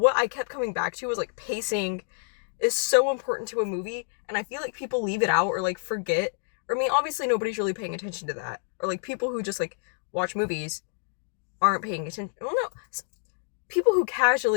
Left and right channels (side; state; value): right; silent; digital silence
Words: I kept coming back to was pacing is so important to a movie, and I feel like people leave it out or forget. Or I mean, obviously nobody's really paying attention to that. Or people who just watch movies aren't paying attention. Well, no, people who